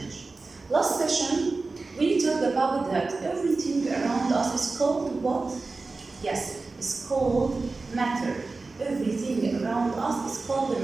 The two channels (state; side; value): quieter; left; 3.7 dB